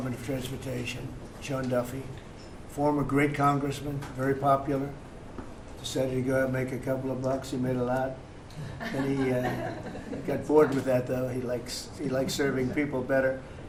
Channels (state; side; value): identical; both; correlation 1.00